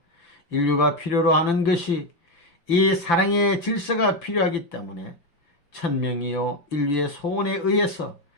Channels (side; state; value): right; late; 5.9 ms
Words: 인류가 필요로 하는 것이 이 사랑의 질서가 필요하기 때문에 천명이요 인류의 소원에 의해서